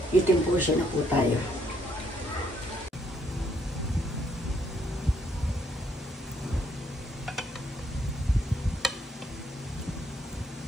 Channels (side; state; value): both; normal; correlation 0.71